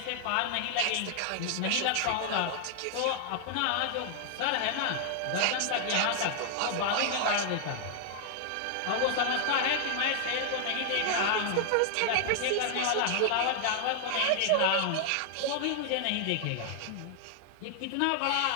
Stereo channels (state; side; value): different; both; correlation 0.00